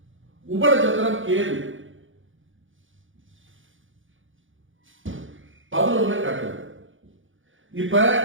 உப நட்சத்திரம் கேது 11 காட்டுது. இப்ப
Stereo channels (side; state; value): left; late; 0.57 ms